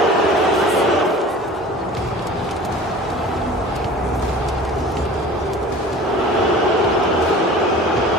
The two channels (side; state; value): both; normal; correlation 0.41